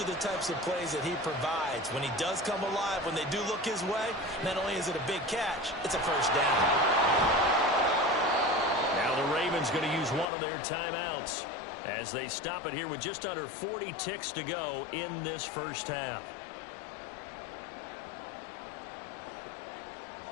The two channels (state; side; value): drops out; right; at 10.2 s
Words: the types of plays that he provides. When he does come alive, when they do look his way, not only is it a big catch, it's a first down. Now the Ravens going to use one of their timeouts as they stop it here with just under 40 ticks to go in this first half.